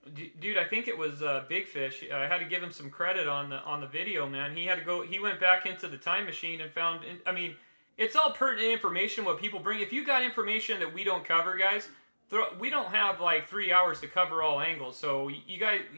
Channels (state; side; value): inverted; both; correlation -1.00